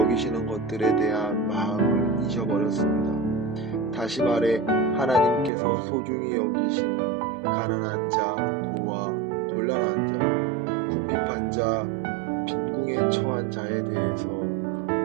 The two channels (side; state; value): left; drops out; at 5.5 s